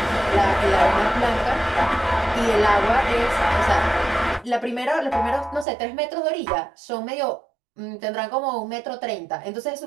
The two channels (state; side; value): drops out; left; at 5.7 s